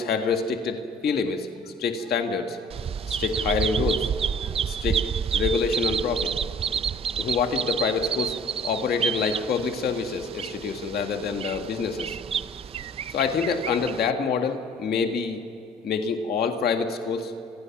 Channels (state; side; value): normal; both; correlation 0.50